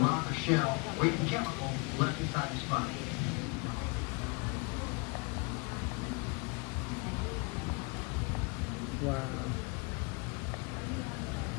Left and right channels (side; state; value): right; quieter; 30.9 dB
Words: or shell or even chemical left inside the sponge. Wow.